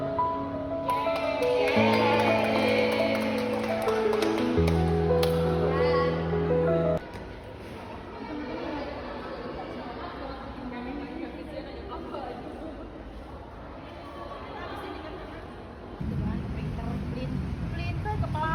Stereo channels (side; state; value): both; identical; correlation 1.00